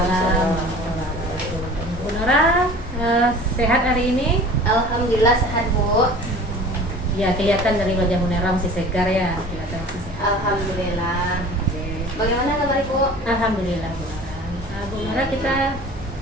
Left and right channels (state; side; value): normal; both; correlation 0.42